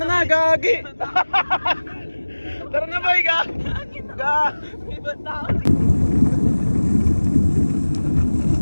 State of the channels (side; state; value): both; inverted; correlation -1.00